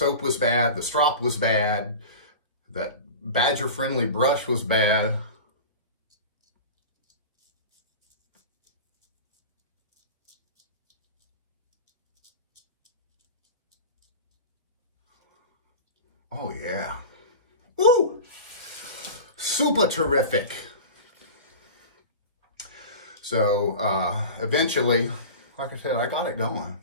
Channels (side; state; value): both; inverted; correlation -0.33